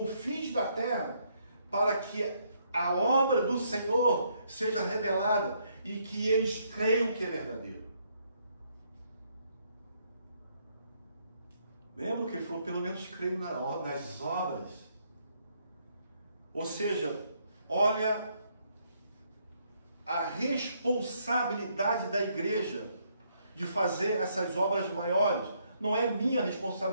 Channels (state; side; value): inverted; both; correlation -0.72